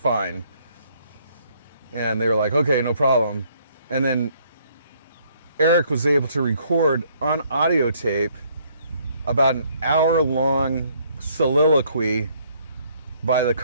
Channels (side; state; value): both; inverted; correlation -0.65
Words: And they were like, okay, no problem. And then Eric was able to record on audio tape about an hour-long soliloquy by the